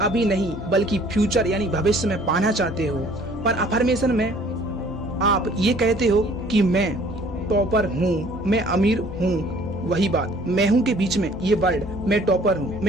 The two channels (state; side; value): noise; right; rumble, 23 dB below the sound